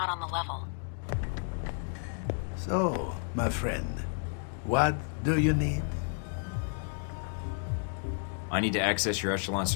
on the level. So, my friend, what do you need? I need to access your Echelon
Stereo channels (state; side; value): silent; right; 57 dB below the other